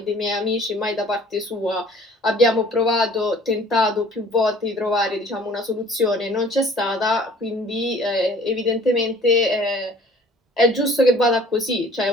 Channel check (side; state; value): both; normal; correlation 0.52